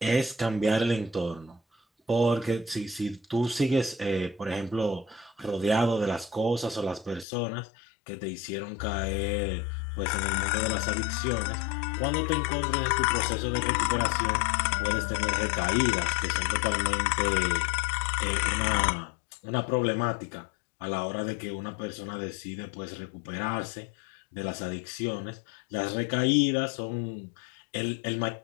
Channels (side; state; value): right; drops out; at 7.2 s